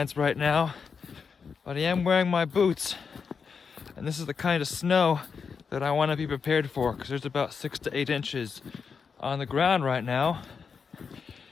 right now, but I am wearing my boots. And this is the kind of snow that I want to be prepared for, because there's about 6 to 8 inches on the ground right now.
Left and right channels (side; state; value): right; quieter; 5.8 dB